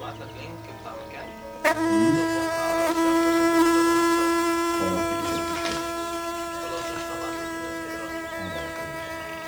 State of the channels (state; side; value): identical; both; correlation 1.00